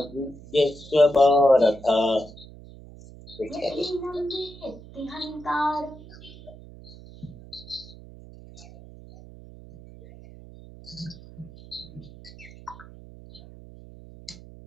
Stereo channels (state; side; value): noise; right; hum, 18 dB below the sound